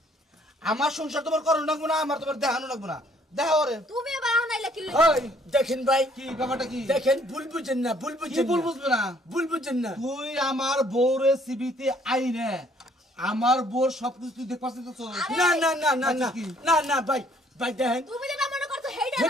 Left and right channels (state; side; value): normal; both; correlation 0.62